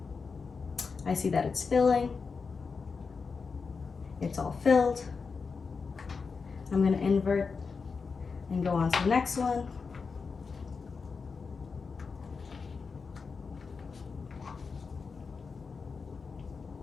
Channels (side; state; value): right; quieter; 5.0 dB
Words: I see that it's filling. It's all filled. I'm going to invert and go on to the next one.